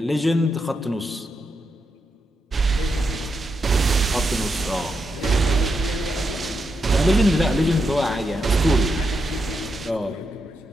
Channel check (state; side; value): normal; both; correlation 0.84